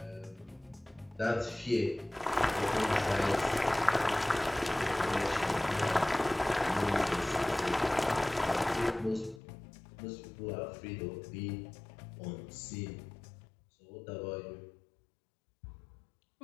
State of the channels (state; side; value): drops out; right; at 9.4 s